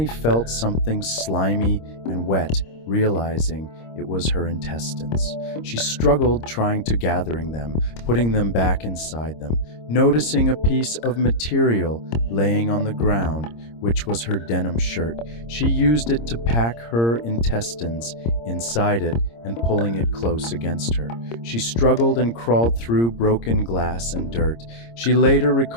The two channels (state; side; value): late; right; 26 ms